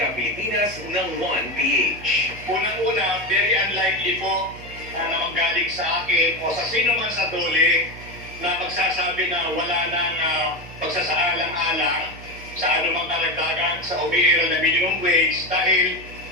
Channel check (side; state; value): right; noise; hum, 16 dB below the sound